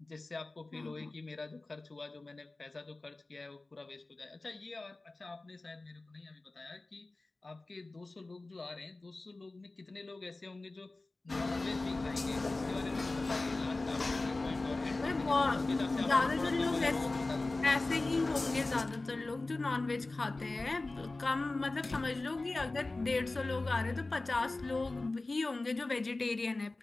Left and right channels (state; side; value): quieter; right; 3.1 dB